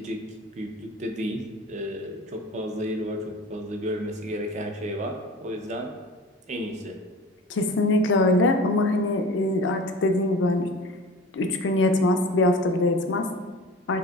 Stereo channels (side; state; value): both; normal; correlation 0.39